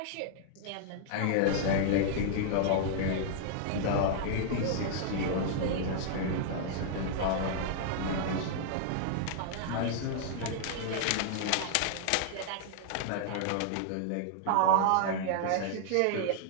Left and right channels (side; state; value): both; different; correlation -0.01